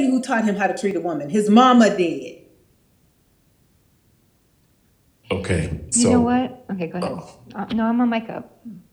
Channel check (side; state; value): both; identical; correlation 1.00